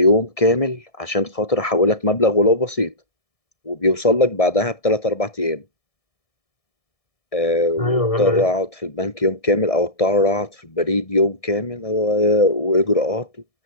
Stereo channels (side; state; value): right; late; 1.7 ms